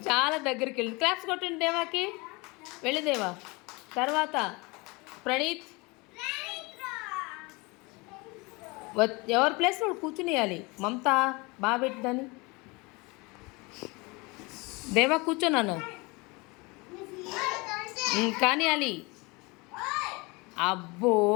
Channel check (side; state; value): right; quieter; 26.1 dB